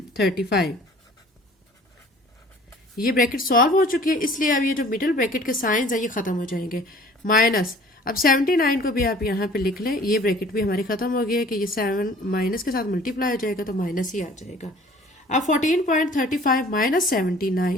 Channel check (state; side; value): normal; both; correlation 0.50